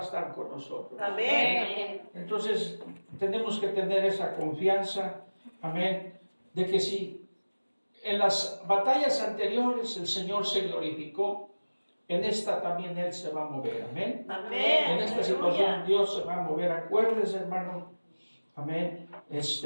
estar con nosotros. Amén. Entonces, tenemos que tener esa confianza, amén, de que si en las batallas anteriores el Señor se glorificó, en esta también Él se va a mover, amén. Amén. En esta situación Dios se va a mover. Acuérdese, hermano, amén,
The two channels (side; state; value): both; inverted; correlation -1.00